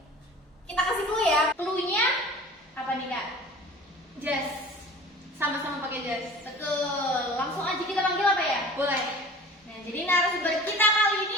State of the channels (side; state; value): both; normal; correlation 0.42